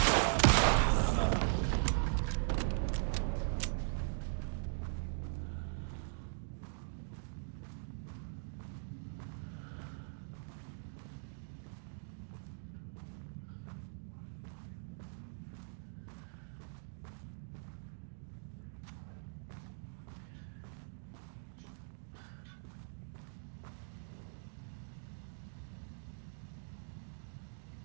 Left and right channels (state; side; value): silent; left; digital silence